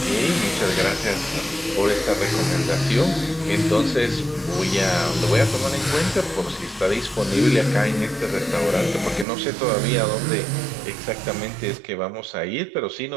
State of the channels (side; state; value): left; drops out; at 9.2 s